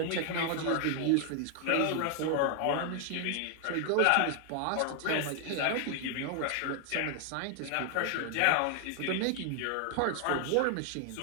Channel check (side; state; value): both; different; correlation 0.00